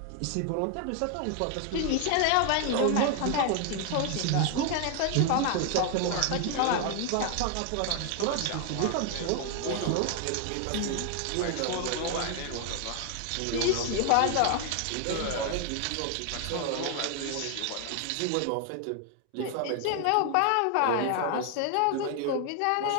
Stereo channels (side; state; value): both; different; correlation 0.00